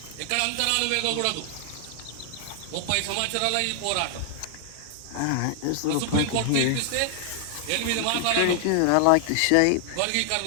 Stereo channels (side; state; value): both; different; correlation 0.00